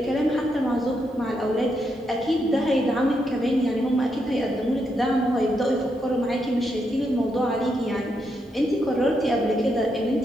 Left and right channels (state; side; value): normal; both; correlation 0.81